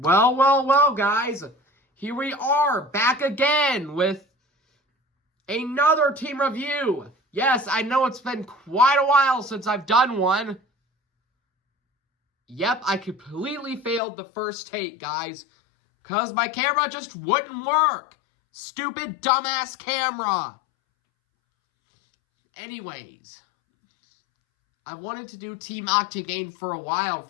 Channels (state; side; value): drops out; right; at 14.0 s